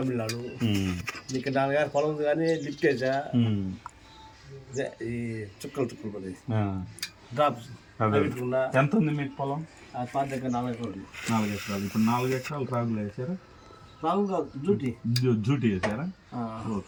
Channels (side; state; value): both; identical; correlation 1.00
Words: ఇక్కడ 4 గారి పొలం ఉంది కానీ లిఫ్ట్ వేసా. ఈ చుక్కలు పడి డ్రాప్స్ ఎంత ఉంది మీకు పొలం? 4 ఎకరాలు. 4 ఎకరాలు. ఇప్పుడు 4 ఎకరాలు రాగులు వేసారా? రాగు కాదు, జూటీ వేసారా?